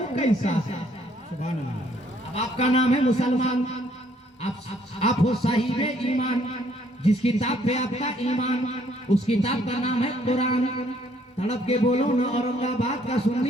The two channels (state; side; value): normal; both; correlation 0.65